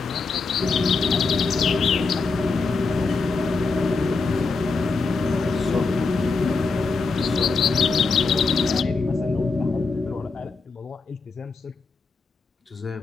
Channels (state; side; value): quieter; right; 4.3 dB